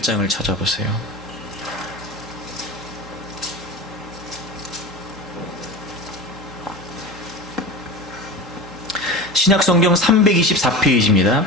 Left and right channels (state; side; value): normal; both; correlation 0.29